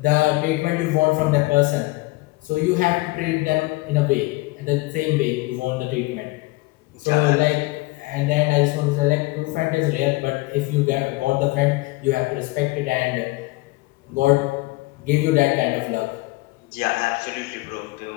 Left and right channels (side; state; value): right; quieter; 21.9 dB